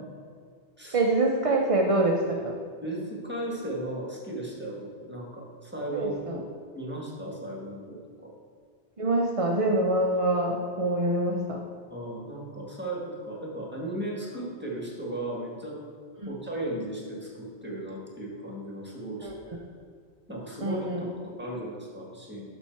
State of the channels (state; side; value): normal; both; correlation -0.09